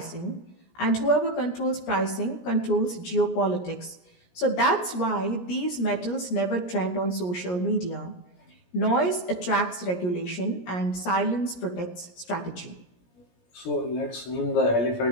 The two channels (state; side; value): late; right; 17 ms